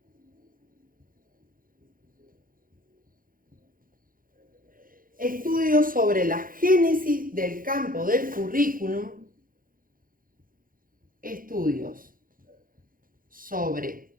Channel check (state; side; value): late; left; 0.41 ms